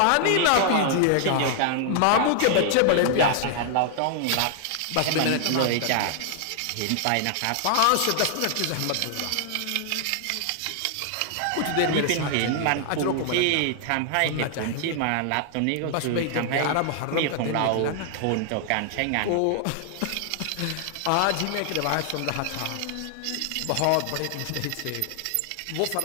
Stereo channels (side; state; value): both; different; correlation 0.00